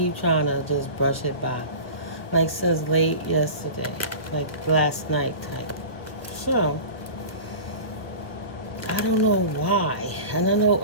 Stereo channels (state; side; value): late; right; 1.1 ms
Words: trying to just brush it by. Like since late yesterday. Like last night type. So, I don't know why. And I know